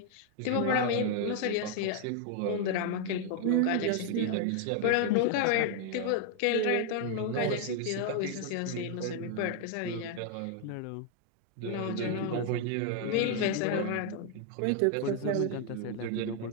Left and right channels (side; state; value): both; different; correlation 0.00